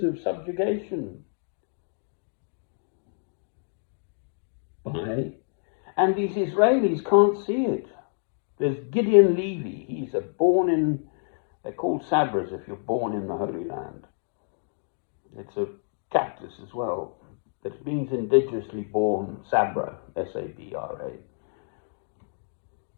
of subjugation. And these Israelis can't see it. There's Gideon Levy. He's they're called Sabras if you're born in the Holy Land. It's a cactus as well. That means indigenously born, Sabra, S-A-B-R-A.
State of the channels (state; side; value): silent; right; digital silence